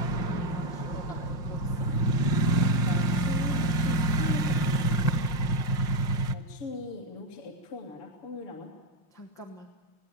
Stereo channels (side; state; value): right; late; 5.7 ms